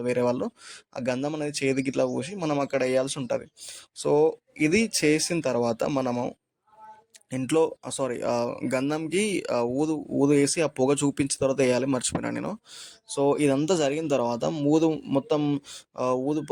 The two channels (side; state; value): both; identical; correlation 1.00